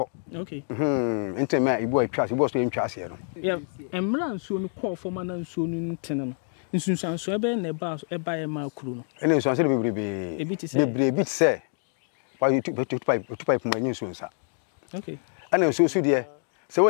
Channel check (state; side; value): silent; right; 58 dB below the other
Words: okay nti ma ibu etwa ase ibu so entwa ase no ya emra nsuo no call forma na nsuo no ntene no nsunsanso ebe na eba ya ma kuru no ene nsunsanso bebrebe se wa tu pipe mu anyi nsunsa okay ana nsunsu de se